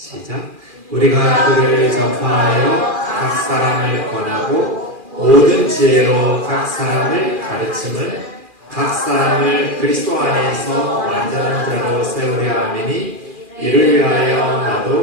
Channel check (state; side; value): late; left; 2.4 ms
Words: 우리가 그를 전파하여 각 사람을 권하고 모든 지혜로 각 사람을 가르침을 각 사람을 그리스도 안에서 완전한 자로 세우려 함이니 이를 위하여